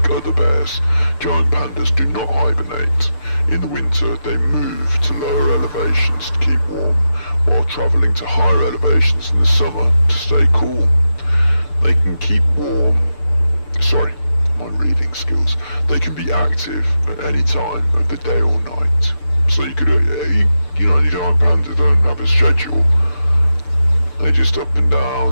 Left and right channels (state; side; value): late; right; 6.8 ms